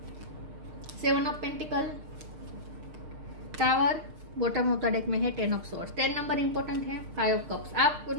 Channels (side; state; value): left; late; 6.5 ms